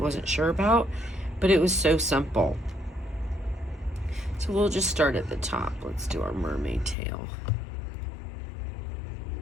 sure about, but it was so simple. So we'll just start at the top. Let's do our mermaid tail.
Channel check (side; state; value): right; drops out; at 7.0 s